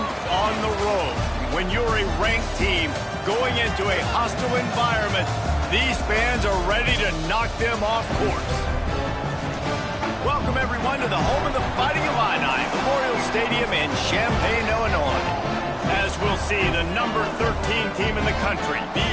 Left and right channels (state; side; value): identical; both; correlation 1.00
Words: on the road. When you're a ranked team going into a hostile environment, these fans are ready to knock them off course. Welcome, everyone, to the home of the Fighting Illini, Memorial Stadium in Champaign, Illinois. As we'll see, the number 13 team in the country, the